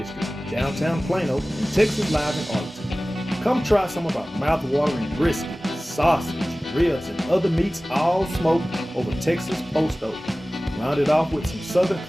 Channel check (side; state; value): both; normal; correlation 0.97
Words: downtown Plano, and Texas Live in Arlington. Come try some of our mouth-watering brisket, sausage, ribs, and other meats all smoked over Texas post oak. Rounded off with some Southern